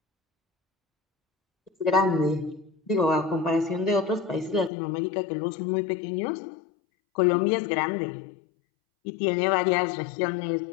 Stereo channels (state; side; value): drops out; right; at 4.7 s